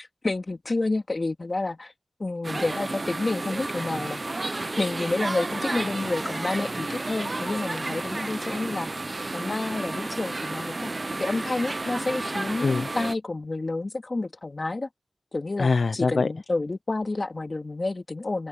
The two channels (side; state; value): both; normal; correlation 0.97